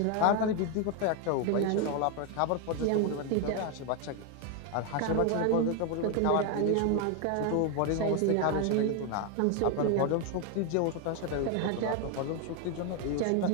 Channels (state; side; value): different; both; correlation 0.01